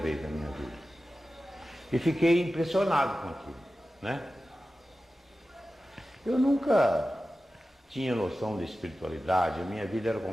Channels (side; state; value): both; normal; correlation 0.94